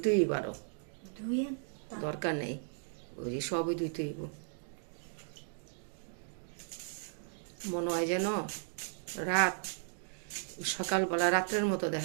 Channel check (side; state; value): left; silent; digital silence